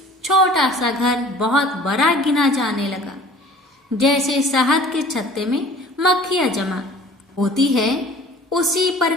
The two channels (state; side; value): normal; both; correlation 0.48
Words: छोटा सा घर बहुत बड़ा गिना जाने लगा। जैसे शहद के छत्ते में मक्खियां जमा होती है, उसी